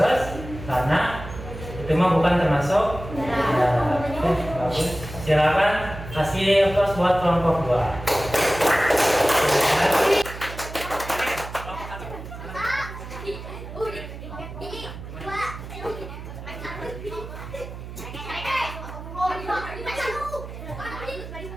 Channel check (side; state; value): right; noise; hum, 11 dB below the sound